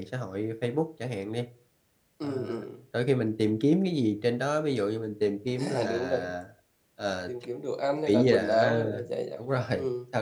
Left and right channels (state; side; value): identical; both; correlation 1.00